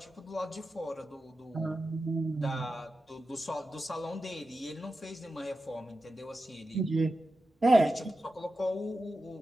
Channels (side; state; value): both; normal; correlation 0.91